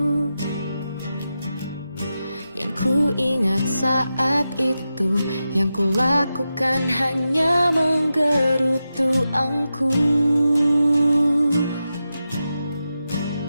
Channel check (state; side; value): inverted; both; correlation -0.90